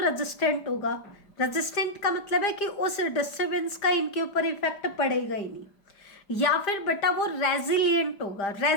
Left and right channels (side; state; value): right; late; 5.0 ms